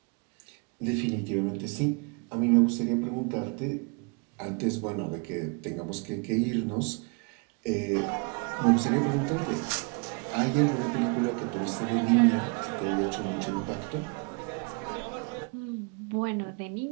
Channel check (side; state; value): left; quieter; 34.1 dB